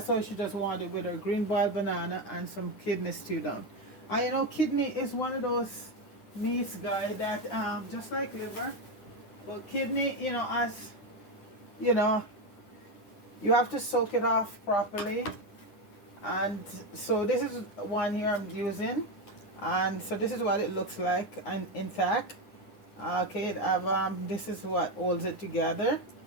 all she just wanted, with her green boiled banana and some kidney stew down. And you know, kidney is one of those meats, guys, that just like liver, but kidney, as you know you have to soak it off properly. And so this is one here I'm using, and so this is what it looks like and intact. Okay, this is what holds it together.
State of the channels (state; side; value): late; right; 9.9 ms